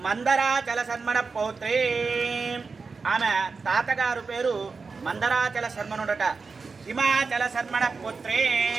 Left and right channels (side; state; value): left; quieter; 4.6 dB